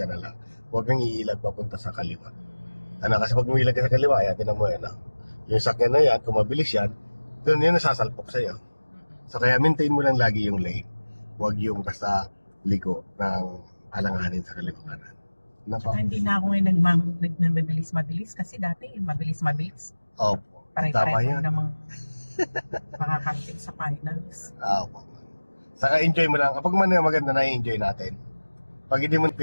na lang. Huwag kang iilag papunta sa kaliwa. Ano, kasi pag umilag ka sa kaliwa, ayan, tingnan mo yan, yung sakyan na yan, kung mabilis yan, doon yun nasasalpok sa'yo. So kaya maintain mo lang lagi yung lane. Huwag yung basta liko ng alanganin sa kaliwa kanan. Napa? Hindi na ako ngayon nagmabilis-mabilis kasi dati mabilis-mabilis. Opo. Tama Pare-pareho yan. namang makakarating sa finals. Opo. Saka enjoy mo lang. Kapag man maganda na enjoy natin. Pag hindi mo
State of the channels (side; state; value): both; inverted; correlation -1.00